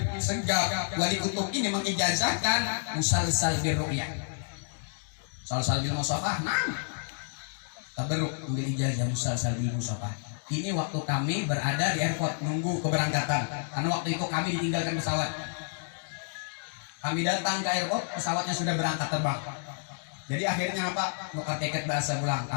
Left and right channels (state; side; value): silent; right; digital silence